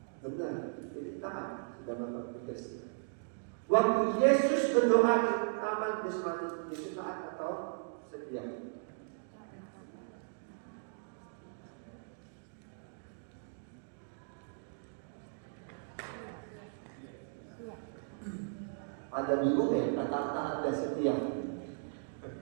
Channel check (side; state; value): left; silent; digital silence